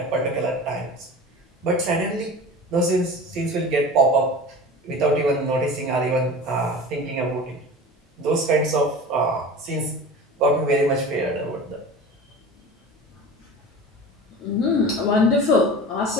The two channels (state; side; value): normal; both; correlation 0.35